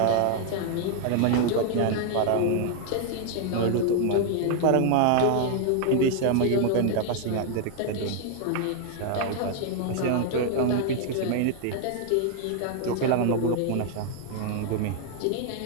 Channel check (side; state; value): both; different; correlation 0.00